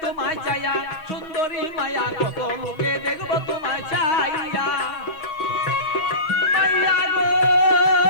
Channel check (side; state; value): right; late; 6.3 ms